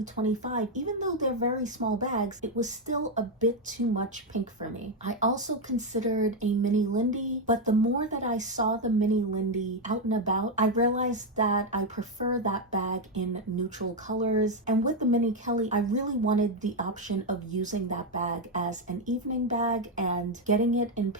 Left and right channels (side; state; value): both; normal; correlation 0.04